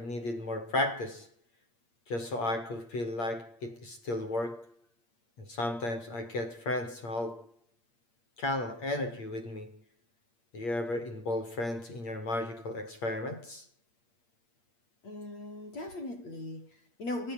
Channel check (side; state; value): right; late; 8.6 ms